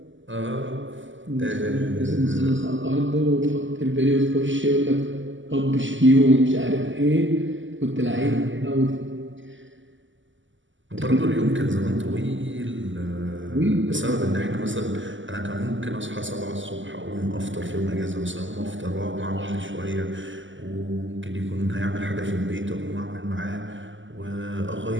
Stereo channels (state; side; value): late; left; 0.55 ms